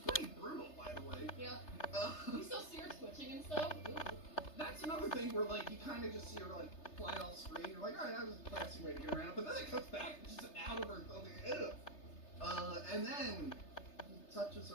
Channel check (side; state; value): right; late; 3.3 ms